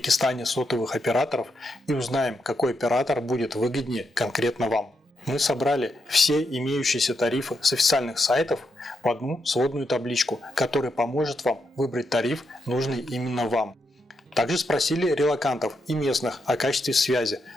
сотовых операторов и узнаем, какой оператор будет выгоднее конкретно вам. Мы собрали все имеющиеся тарифы с официальных сайтов в одну сводную табличку, которая поможет вам выбрать тариф, нужный именно вам. Также спросили релокантов и местных о качестве связи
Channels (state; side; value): normal; both; correlation 0.82